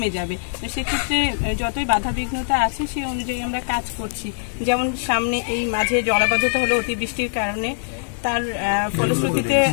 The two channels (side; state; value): right; silent; 56 dB below the other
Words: যাবে। তো সেক্ষেত্রে যতই বাধাবিঘ্নতা আছে সেই অনুযায়ী আমরা কাজ করছি। যেমন সামনে এই মাঝে জলাবদ্ধতা হলো অতিবৃষ্টির কারণে, তার ফলশ্রুতিতে